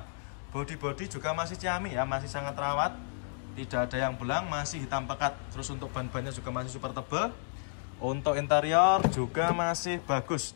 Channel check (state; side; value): silent; right; digital silence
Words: Bodi-bodi juga masih ciamik ya, masih sangat rawat. Tidak ada yang belang, masih hitam pekat. Terus untuk ban-bannya juga masih super tebal. Untuk interior juga masih bagus